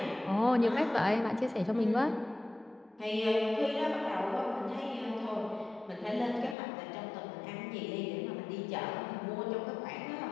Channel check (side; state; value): right; drops out; at 6.6 s